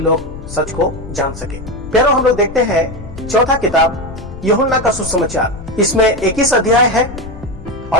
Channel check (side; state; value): left; noise; rumble, 13 dB below the sound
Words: सच को जान सके। प्यारो, हम लोग देखते हैं चौथा किताब यूहन्ना का सुसमाचार। इसमें 21 अध्याय है